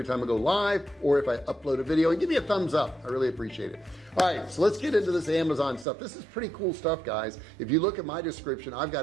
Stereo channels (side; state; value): left; drops out; at 5.9 s